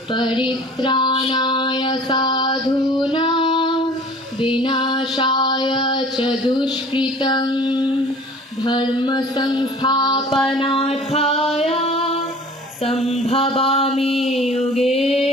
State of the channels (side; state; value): both; normal; correlation 0.46